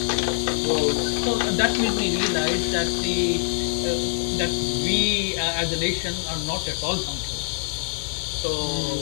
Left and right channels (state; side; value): silent; right; 62 dB below the other